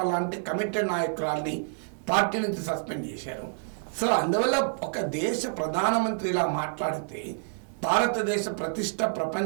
లాంటి కమిటెడ్ నాయకురాల్ని పార్టీ నుంచి సస్పెండ్ చేశారు. సో అందువల్ల ఒక దేశ ప్రధానమంత్రి ఇలా మాట్లాడితే భారతదేశ ప్రతిష్ట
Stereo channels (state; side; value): silent; left; digital silence